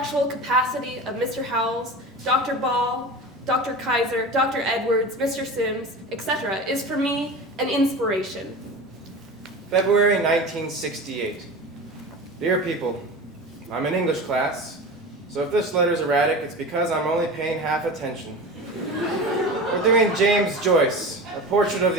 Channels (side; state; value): both; normal; correlation 0.31